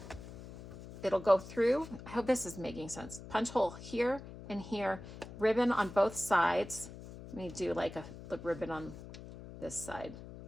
it'll go through. I hope this is making sense. Punch hole here and here, ribbon on both sides. Let me do like a ribbon on this side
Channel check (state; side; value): noise; left; hum, 14 dB below the sound